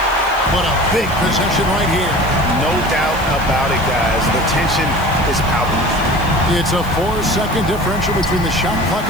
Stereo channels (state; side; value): noise; left; hiss, 19 dB below the sound